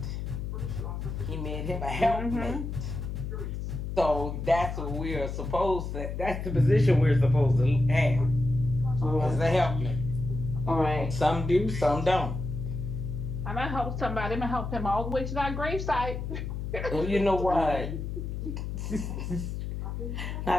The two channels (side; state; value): left; noise; hum, 5 dB below the sound